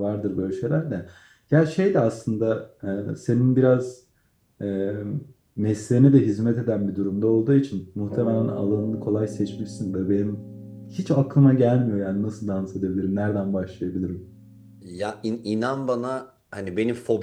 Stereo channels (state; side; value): identical; both; correlation 1.00